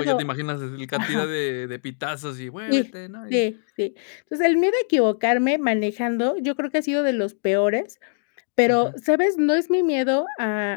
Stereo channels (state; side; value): silent; right; digital silence